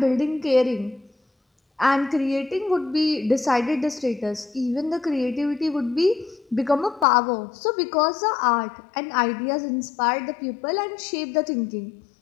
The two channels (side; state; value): right; drops out; at 7.1 s